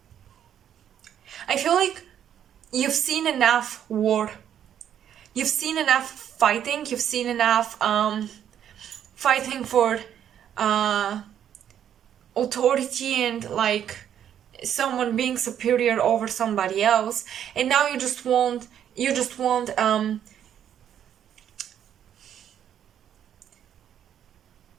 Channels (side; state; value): left; quieter; 9.7 dB